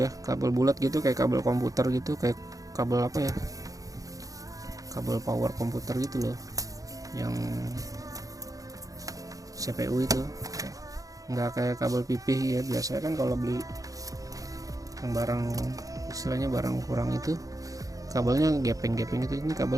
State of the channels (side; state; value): left; late; 0.17 ms